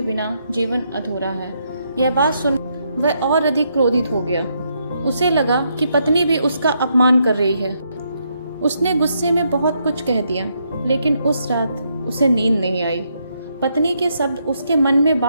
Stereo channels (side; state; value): both; inverted; correlation -0.77